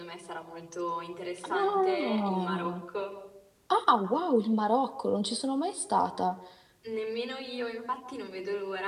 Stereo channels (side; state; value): both; identical; correlation 1.00